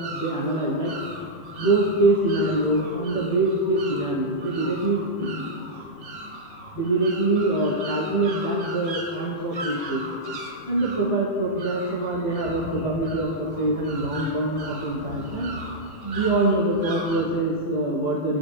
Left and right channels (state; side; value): late; right; 18 ms